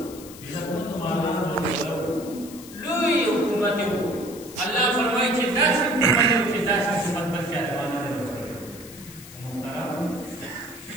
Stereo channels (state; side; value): noise; left; hiss, 17 dB below the sound